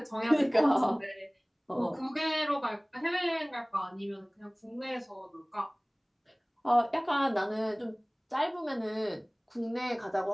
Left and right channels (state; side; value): identical; both; correlation 1.00